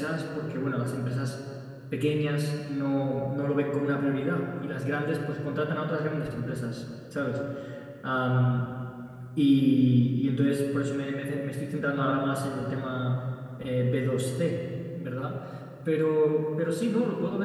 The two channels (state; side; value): identical; both; correlation 1.00